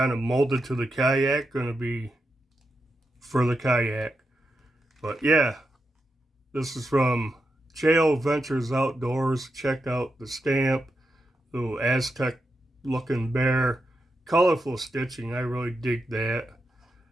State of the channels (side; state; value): both; normal; correlation 0.86